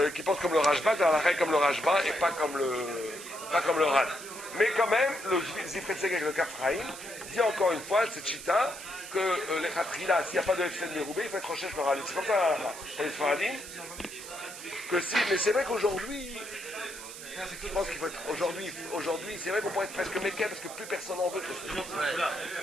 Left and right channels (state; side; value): noise; right; hiss, 12 dB below the sound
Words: qu'il pense comme le Rajba, dans la règle comme le Rajba et pas comme le Ran. Mais quand même, le Zifret Segek, le Kafraïm, dit encore une fois, cette chita, que les Khatrila, s'il n'y a pas de FCN Meroubé, il faut être recherche le Ran. C'est comme ça pour les Sfaradim. Que si, mais c'est vrai qu'aujourd'hui, je pense qu'il faut être aujourd'hui, c'est vrai qu'on pourrait être presque méquet parce que plus personne n'en veut.